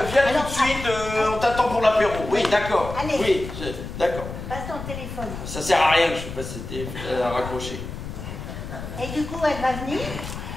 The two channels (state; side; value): noise; left; rumble, 9 dB below the sound